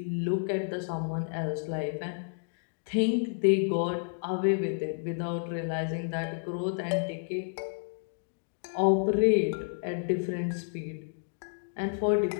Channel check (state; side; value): silent; right; digital silence